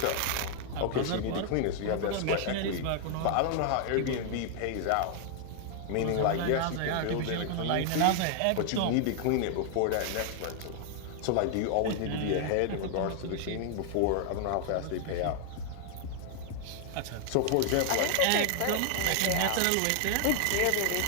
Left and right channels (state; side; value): different; both; correlation 0.00